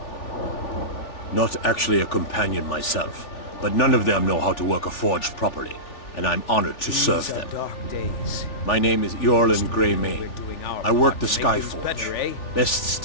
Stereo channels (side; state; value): right; late; 3.4 ms